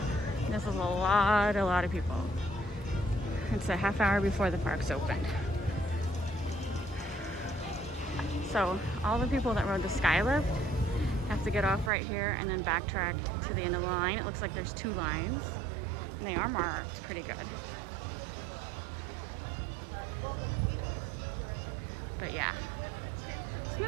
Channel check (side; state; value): left; drops out; at 11.9 s